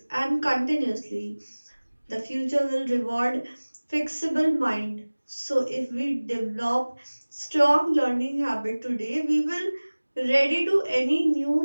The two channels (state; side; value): inverted; both; correlation -1.00